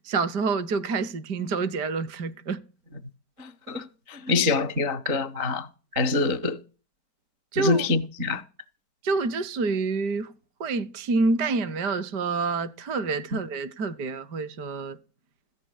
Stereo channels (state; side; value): late; left; 4.0 ms